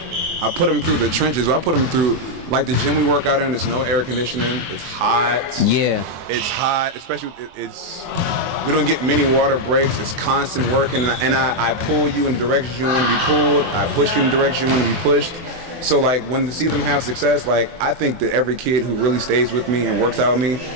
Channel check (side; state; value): left; late; 23 ms